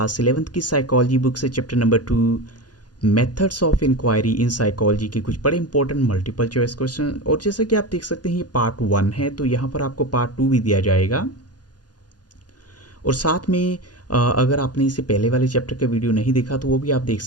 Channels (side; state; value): right; late; 0.69 ms